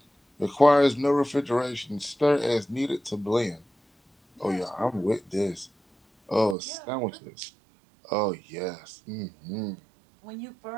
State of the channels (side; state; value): left; drops out; at 6.6 s